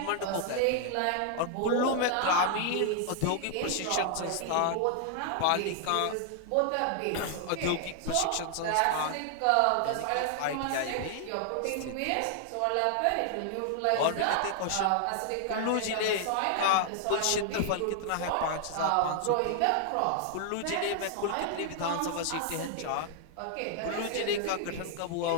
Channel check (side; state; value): both; different; correlation 0.00